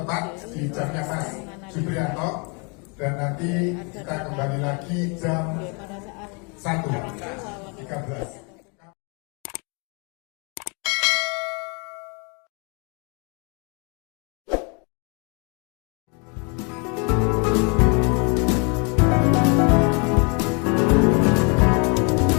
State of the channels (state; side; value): quieter; right; 33.9 dB